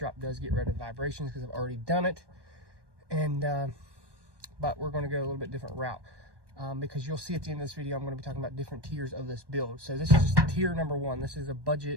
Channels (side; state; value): left; late; 1.2 ms